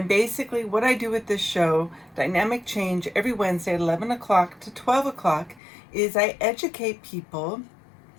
basically what I do with this show, Dynamic Change, every Wednesday at 11 o'clock to 12 o'clock, is I educate people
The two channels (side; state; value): right; drops out; at 5.6 s